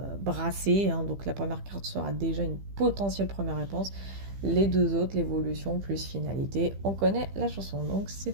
brassé, hein. Donc la première carte sera déjà une potentielle première réponse. Les deux autres, l'évolution plus finalité, on connaît la chanson. Donc c'est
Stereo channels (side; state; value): left; late; 15 ms